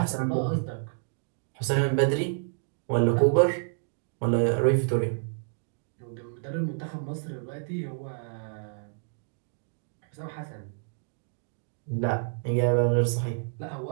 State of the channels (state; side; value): silent; left; digital silence